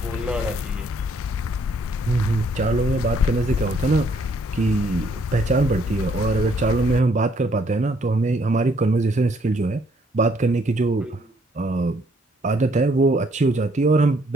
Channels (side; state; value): both; normal; correlation 0.66